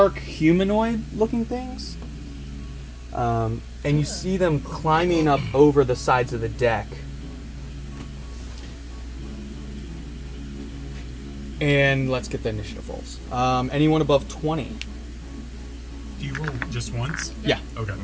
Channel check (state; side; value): identical; both; correlation 1.00